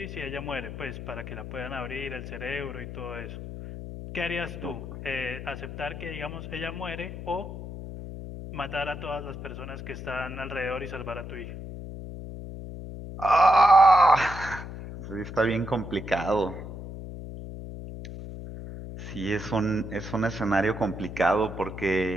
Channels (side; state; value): left; noise; hum, 9 dB below the sound